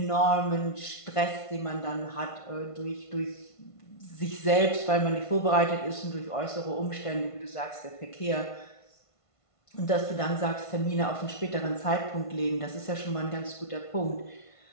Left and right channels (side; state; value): right; late; 1.5 ms